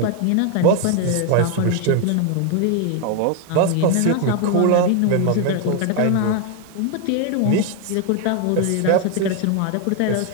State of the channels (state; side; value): different; both; correlation 0.01